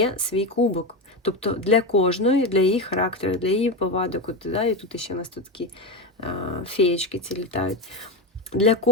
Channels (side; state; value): both; normal; correlation 0.15